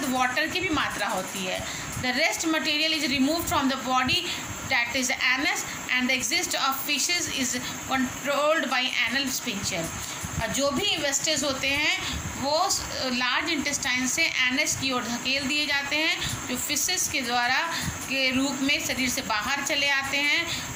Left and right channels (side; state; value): both; identical; correlation 1.00